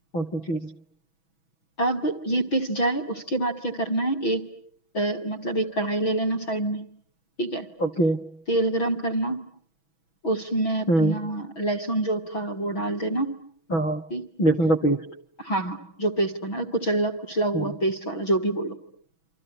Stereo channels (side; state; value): right; late; 6.1 ms